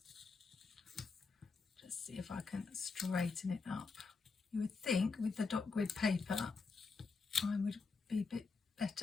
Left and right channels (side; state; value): right; quieter; 4.5 dB